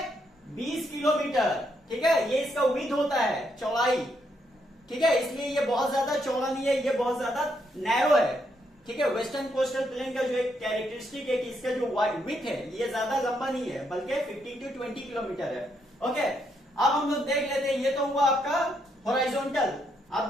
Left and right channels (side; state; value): both; normal; correlation 0.76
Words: 20 किलोमीटर। ठीक है, ये इसका विड्थ होता है, चौड़ाई। ठीक है, इसलिए ये बहुत ज्यादा चौड़ा नहीं है, ये बहुत ज्यादा नैरो है। ठीक है, वेस्टर्न कोस्टल प्लेन का जो एक कैरेक्टरिस्टिक है कि इसका जो विड्थ है ये ज्यादा लंबा नहीं है, बल्कि 15 to 20 किलोमीटर है। ओके, अब हम लोग देख लेते हैं, ये तो हुआ आपका हॉरिजॉन्टल। अब